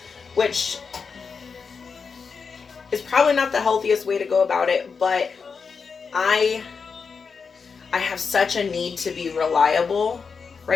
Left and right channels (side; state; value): right; quieter; 5.5 dB